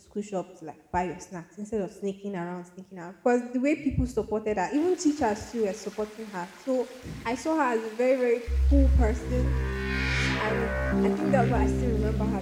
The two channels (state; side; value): identical; both; correlation 1.00